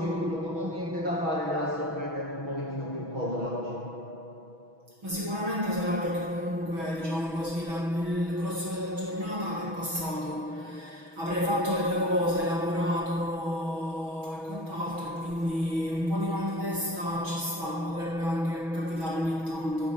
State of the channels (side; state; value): left; late; 6.1 ms